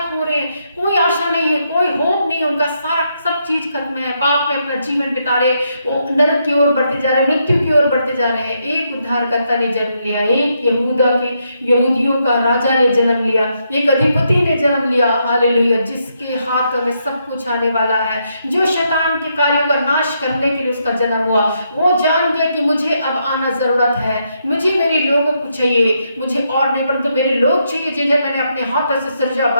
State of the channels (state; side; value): inverted; both; correlation -0.78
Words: पूरे, कोई आशा नहीं है, कोई होप नहीं, उनका सारा सब चीज खत्म है, पाप में अपना जीवन बिता रहे, वो नरक की ओर बढ़ते जा रहे हैं, मृत्यु की ओर बढ़ते जा रहे हैं। एक उद्धारकर्ता ने जन्म लिया, एक यहूदियों का राजा ने जन्म लिया, एक अधिपति ने जन्म लिया। हालेलुया। जिसके हाथों में सब कुछ आने वाला है, जो शैतान के कार्यों का नाश करने के लिए उसका जन्म हुआ। वो जान गया कि मुझे अब आना जरूरत है, मुझे मेरे लोगों को चाहिए, मुझे और नहीं परंतु मेरे लोग चाहिए जिन्हें मैंने अपने हाथों से सृजा